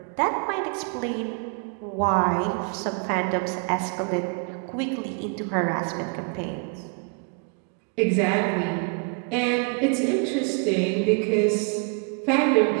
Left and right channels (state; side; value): quieter; left; 38.1 dB